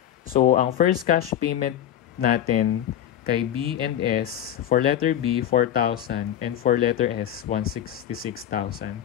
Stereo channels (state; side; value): quieter; right; 10.7 dB